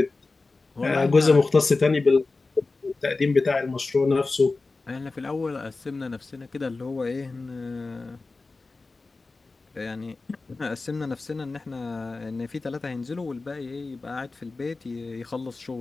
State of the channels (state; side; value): quieter; right; 3.7 dB